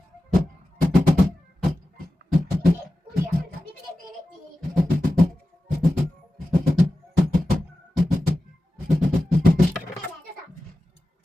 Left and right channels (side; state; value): both; normal; correlation 0.94